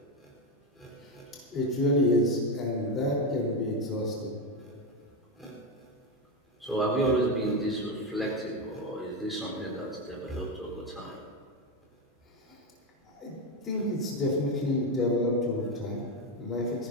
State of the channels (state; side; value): normal; both; correlation 0.12